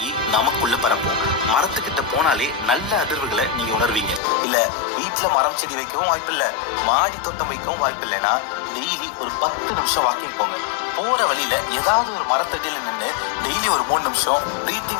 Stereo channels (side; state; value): right; drops out; at 4.2 s